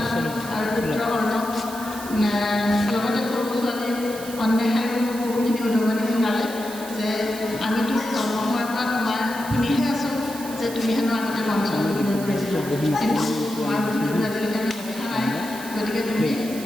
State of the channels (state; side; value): noise; right; hiss, 13 dB below the sound